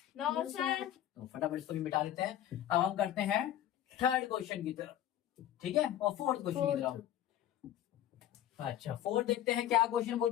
No sir. तो फटाफट इसको भी मिटा लेते हैं। अब हम करते हैं थर्ड क्वेश्चन की तरफ, ठीक है, और फोर्थ क्वेश्चन की तरफ। अच्छा, फोर्थ देखते हैं क्या क्वेश्चन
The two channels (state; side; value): quieter; right; 11.6 dB